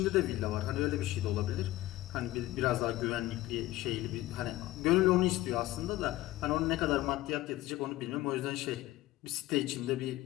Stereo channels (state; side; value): quieter; right; 16.6 dB